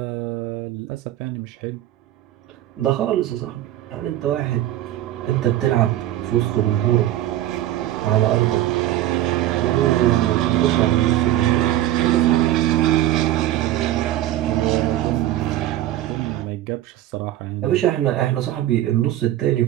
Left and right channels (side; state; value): left; quieter; 13.7 dB